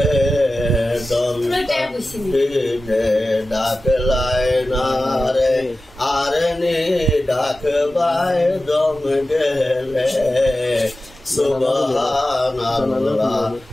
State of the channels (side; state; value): both; normal; correlation 0.94